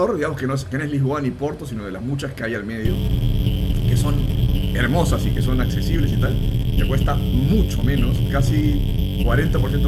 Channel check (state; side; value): identical; both; correlation 1.00